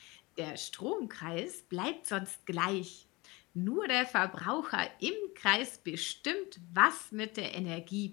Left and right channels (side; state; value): right; quieter; 23.8 dB